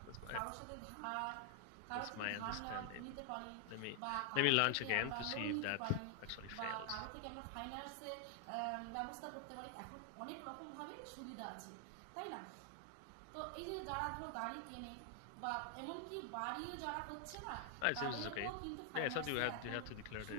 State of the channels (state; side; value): different; both; correlation 0.00